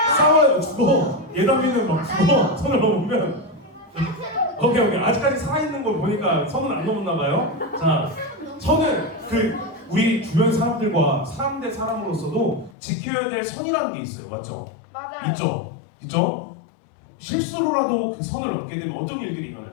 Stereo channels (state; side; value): drops out; right; at 12.7 s